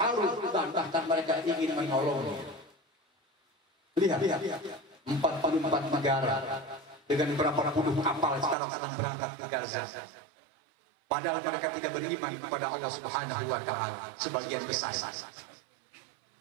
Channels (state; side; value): drops out; left; at 8.6 s